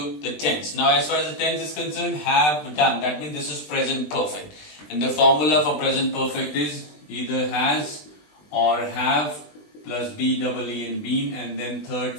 the tense. Now, as far as the tense is concerned, have done. That means this is present perfect. And the formula for present perfect is either has or have plus be, double E and been, and then third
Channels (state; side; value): late; right; 20 ms